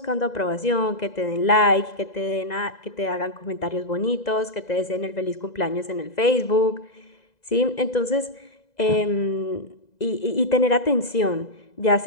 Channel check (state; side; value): late; right; 2.0 ms